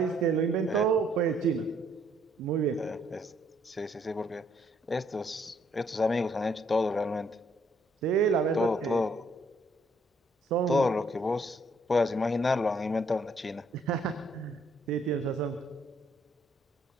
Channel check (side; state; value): both; normal; correlation 0.68